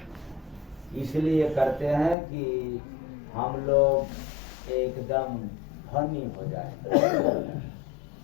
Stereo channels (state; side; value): drops out; right; at 2.1 s